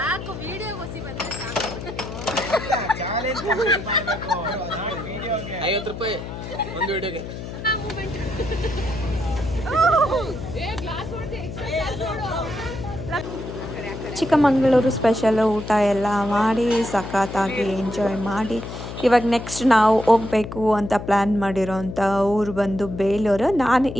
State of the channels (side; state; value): left; noise; hum, 9 dB below the sound